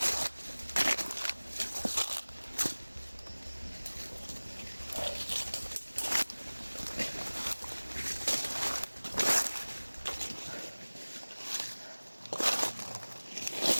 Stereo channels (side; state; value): both; inverted; correlation -1.00